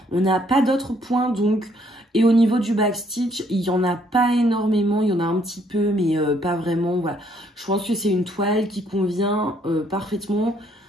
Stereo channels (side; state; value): both; normal; correlation 0.67